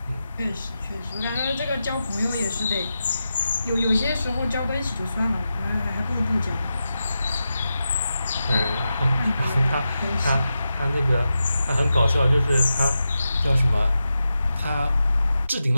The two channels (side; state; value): both; inverted; correlation -0.90